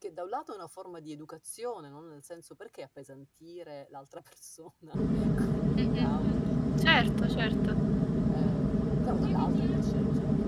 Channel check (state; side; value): identical; both; correlation 1.00